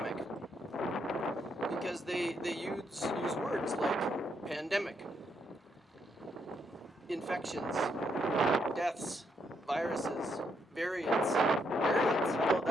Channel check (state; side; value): normal; both; correlation 0.77